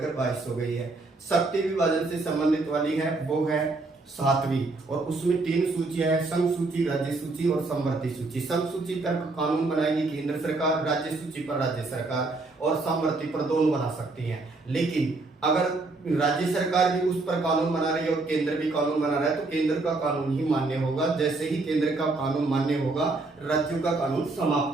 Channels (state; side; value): quieter; left; 3.4 dB